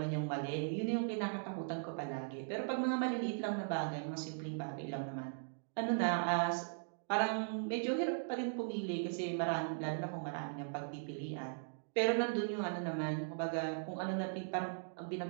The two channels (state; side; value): silent; left; digital silence